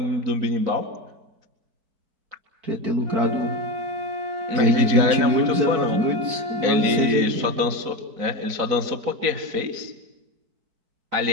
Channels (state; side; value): late; left; 4.5 ms